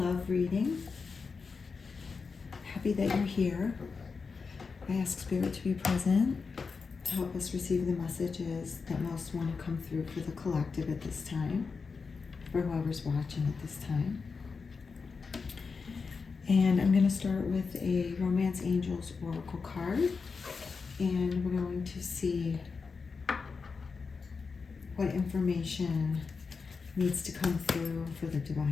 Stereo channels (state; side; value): quieter; right; 4.9 dB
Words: reading. Happy that you're here. I ask Spirit to be present to help us receive the messages that most want to come through for the collective at this time, for whoever's watching at this time. And I'm going to start with a Romance Angels Oracle card, and we're going to see what information needs to come through for the